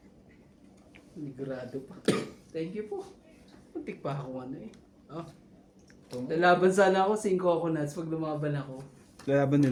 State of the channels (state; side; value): identical; both; correlation 1.00